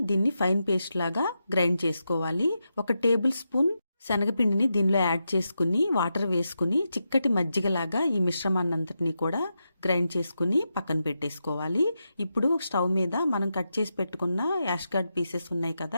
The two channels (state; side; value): inverted; both; correlation -0.87